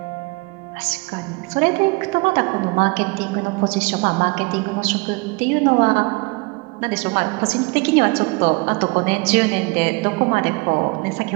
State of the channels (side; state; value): left; quieter; 27.0 dB